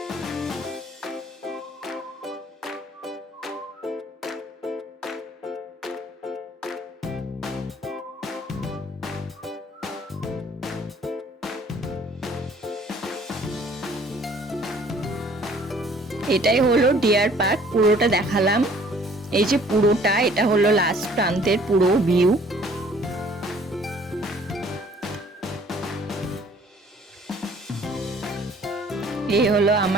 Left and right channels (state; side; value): normal; both; correlation 0.56